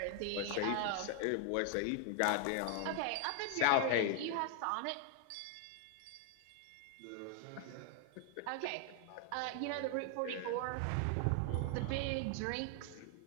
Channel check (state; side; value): different; both; correlation 0.00